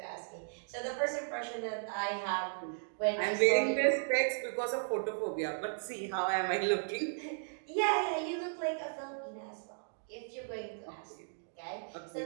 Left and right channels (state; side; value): silent; left; digital silence